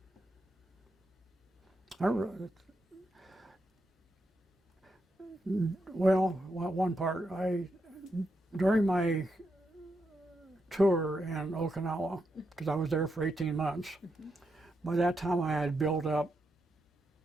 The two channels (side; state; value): both; normal; correlation 0.83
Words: I re- well, one part, during my tour in Okinawa, because I was there for 18 months, by that time I had built up